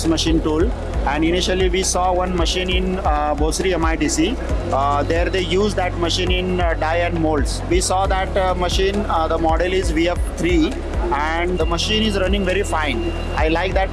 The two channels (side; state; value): both; identical; correlation 1.00